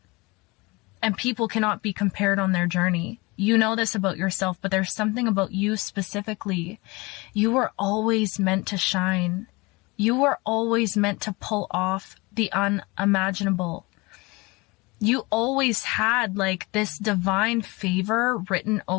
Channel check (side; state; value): right; quieter; 24.8 dB